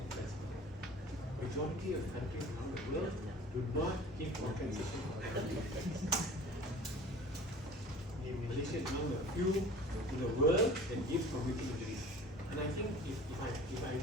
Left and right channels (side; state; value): both; normal; correlation 0.44